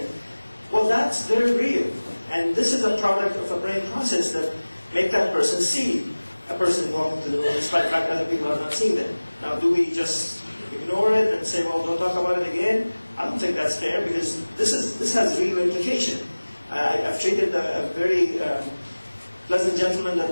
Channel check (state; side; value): inverted; both; correlation -1.00